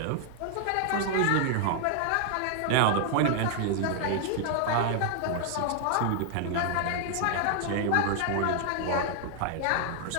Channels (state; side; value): different; both; correlation 0.00